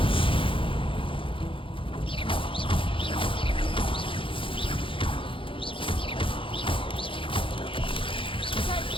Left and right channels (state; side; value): late; right; 0.25 ms